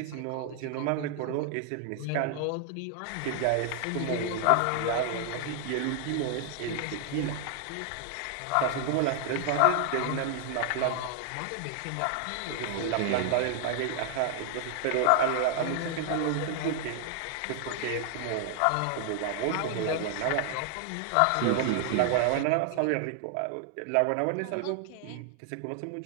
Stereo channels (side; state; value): both; different; correlation 0.00